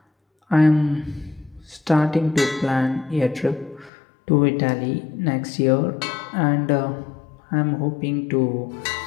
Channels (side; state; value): right; drops out; at 3.9 s